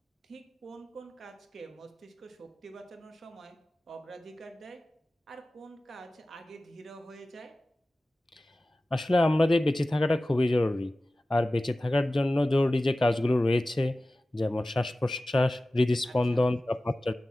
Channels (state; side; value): normal; both; correlation 0.96